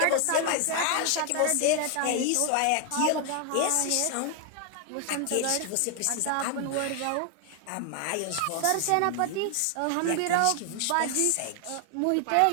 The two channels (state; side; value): different; both; correlation 0.00